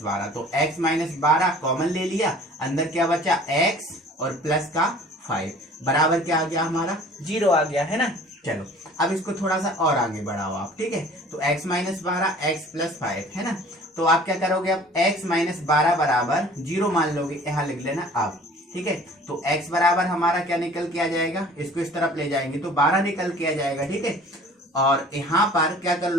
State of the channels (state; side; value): normal; both; correlation 0.48